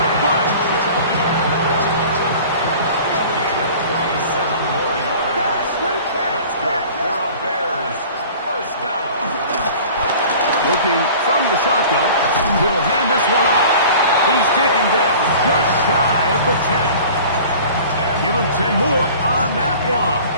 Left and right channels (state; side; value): inverted; both; correlation -0.44